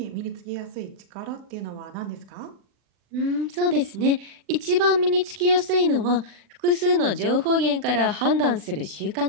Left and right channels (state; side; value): late; left; 40 ms